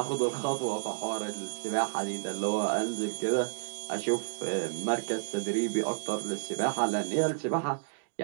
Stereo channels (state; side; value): silent; left; digital silence